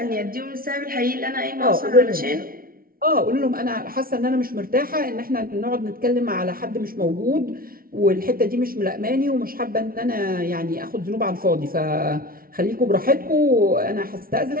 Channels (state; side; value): late; left; 0.43 ms